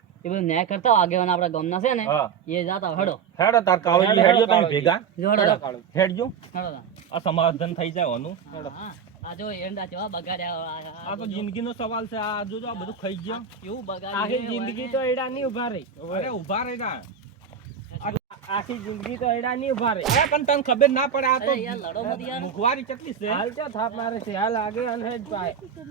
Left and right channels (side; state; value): left; quieter; 7.1 dB